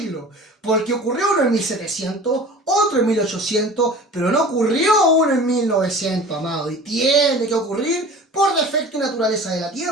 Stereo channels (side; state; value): both; normal; correlation 0.41